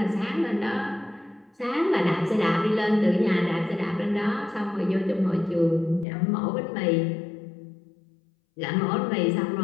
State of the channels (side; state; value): right; drops out; at 6.1 s